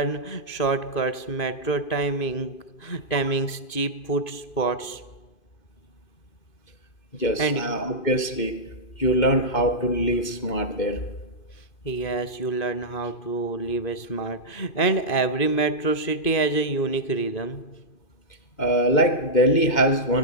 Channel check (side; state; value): right; late; 2.5 ms